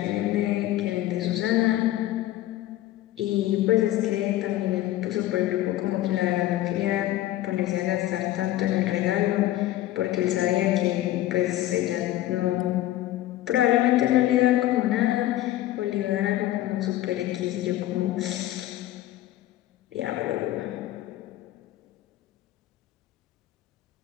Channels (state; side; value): quieter; right; 14.6 dB